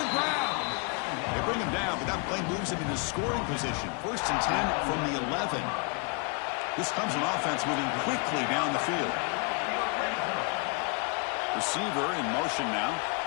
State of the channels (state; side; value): quieter; right; 34.6 dB